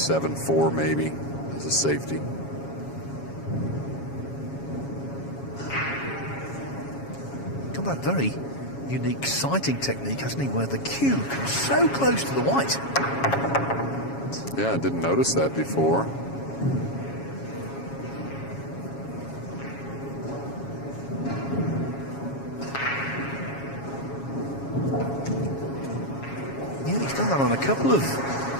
maybe as a safety. Got that very unique sighting technique, hasn't he, where the cue comes so close to the white. Yeah, I didn't notice that before. Yeah, he's done that on a couple of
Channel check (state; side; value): late; right; 7.3 ms